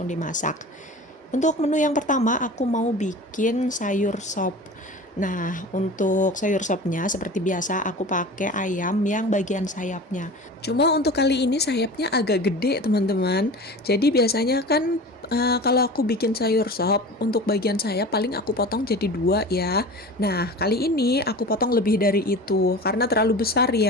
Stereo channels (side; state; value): both; normal; correlation 0.36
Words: dimasak. Untuk menu yang pertama, aku mau bikin sayur sop. Nah, untuk sayur sopnya seperti biasa aku pakai ayam yang bagian sayapnya. Cuma untuk kali ini sayapnya agak gede, teman-teman. Jadi biasanya kan kalau aku bikin sayur sop, untuk bagian sayap paling aku potong jadi dua ya. Nah, kali ini aku potong lebih dari itu karena terlalu besar